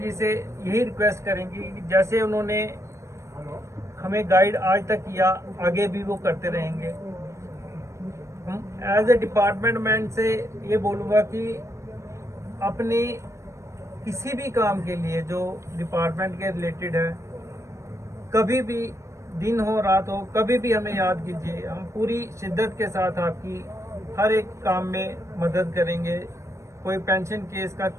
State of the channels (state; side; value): late; left; 0.14 ms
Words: से यही रिक्वेस्ट करेंगे कि जैसे उन्होंने हमें गाइड आज तक किया, आगे भी वो करते रहेंगे। हम एज ए डिपार्टमेंट मैन से ये बोलूँगा कि अपने किसी भी काम के लिए जो डिपार्टमेंट के रिलेटेड है, कभी भी दिन हो रात हो, कभी भी हमें याद कीजिए। हम पूरी शिद्दत के साथ आपकी हर एक काम में मदद करेंगे। कोई पेंशन केस का